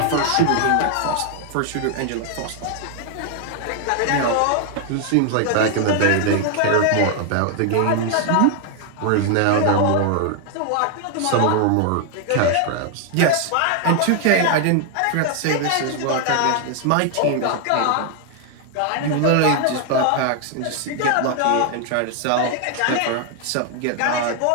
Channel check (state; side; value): different; both; correlation 0.00